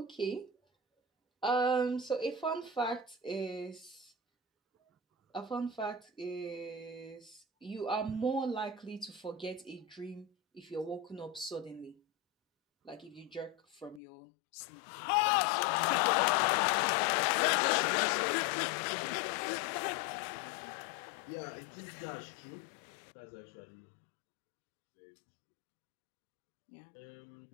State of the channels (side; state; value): right; drops out; at 14.0 s